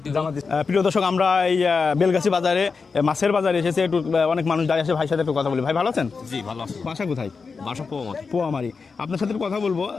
দিব। প্রিয় দর্শক, আমরা এই বেলগাছি বাজারে মাছের বাজারে এসেছে, একটু অনেক মানুষ দাঁড়িয়ে আছে, ভাইয়ের সাথে একটু কথা বলি। ভাই ভালো আছেন? জি ভালো আছি। বাসা কোথায়? বাসা পোয়ামারি। পোয়ামারি। আপনার সাথে কথা বলবো,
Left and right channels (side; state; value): right; quieter; 4.9 dB